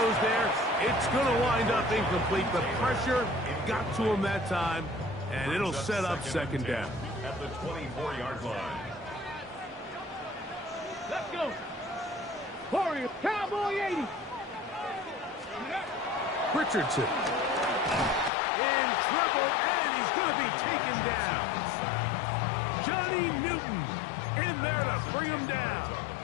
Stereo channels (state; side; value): drops out; right; at 18.3 s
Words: there. It's going to wind up incomplete. The pressure got to him that time, and it'll set up 2nd down. At the 24-yard line. Let's go. Warriors, Cowboy 80. Richardson. In trouble, and he's going to be taken down. Johnny Newton in there to bring him down.